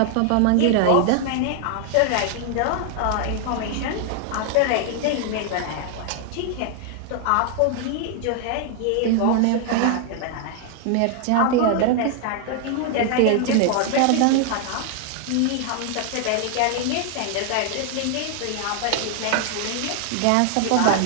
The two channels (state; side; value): different; both; correlation 0.00